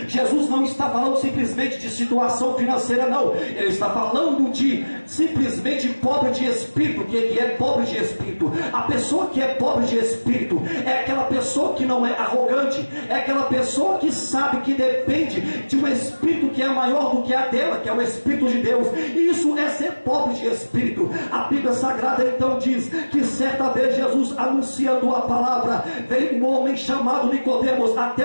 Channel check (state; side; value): inverted; both; correlation -1.00